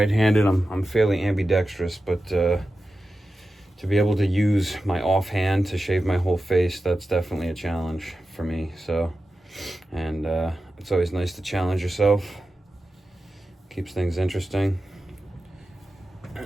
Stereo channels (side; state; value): both; normal; correlation 0.92